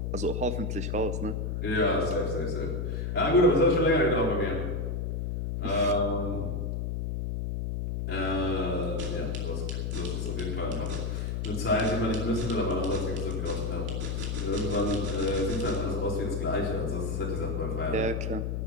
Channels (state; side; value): noise; left; hum, 1 dB below the sound